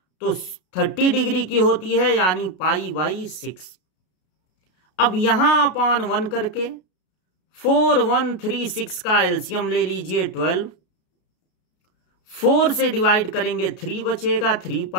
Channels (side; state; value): right; late; 33 ms